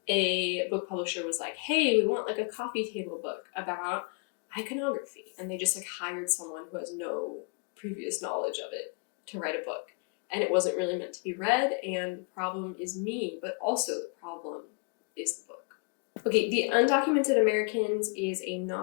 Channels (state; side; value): quieter; right; 36.9 dB